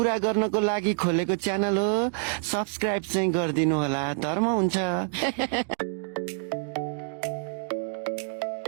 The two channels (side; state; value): left; silent; digital silence